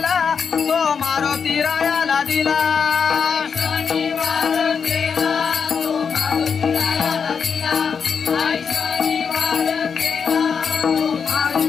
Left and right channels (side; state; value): right; quieter; 6.3 dB